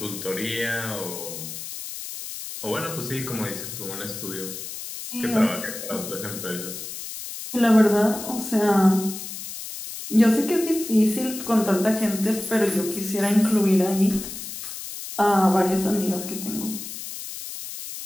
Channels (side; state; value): left; noise; hiss, 9 dB below the sound